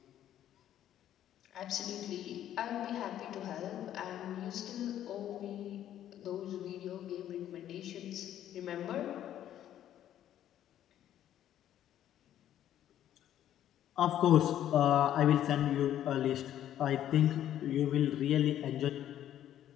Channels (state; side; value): quieter; right; 11.4 dB